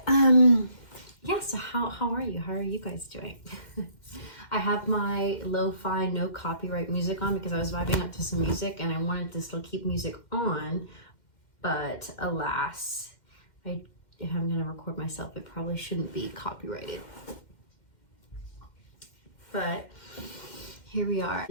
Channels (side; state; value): right; late; 2.1 ms